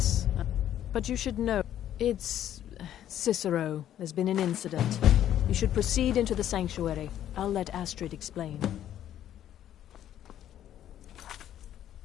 but you should know, it's Cicero. There's been an incident. You should proceed into the sanctuary. I'll let Astrid explain.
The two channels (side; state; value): right; quieter; 11.2 dB